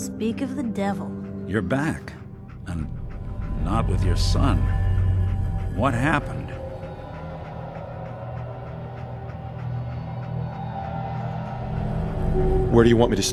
of the devil. You're back. And not with your son. What happened? Where do you want me to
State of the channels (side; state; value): both; identical; correlation 1.00